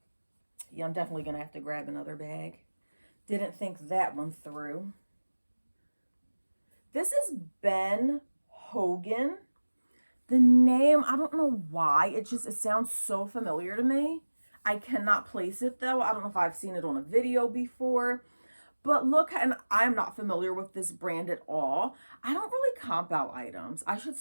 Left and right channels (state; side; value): inverted; both; correlation -1.00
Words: Yeah, I'm definitely going to have to grab another bag. Didn't think that one through. This is Ben Hogan. The name, I don't know why. It sounds so familiar to me. I cannot place it though. I don't know if I've seen it on a video before. But look, and I'm not familiar with this brand at all. I don't really comp out items. I should